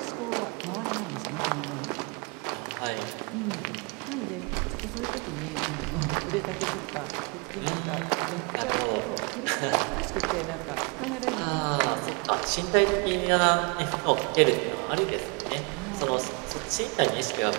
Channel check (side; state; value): left; quieter; 32.0 dB